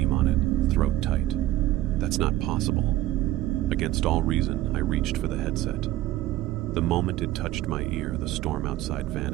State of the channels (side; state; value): left; quieter; 15.0 dB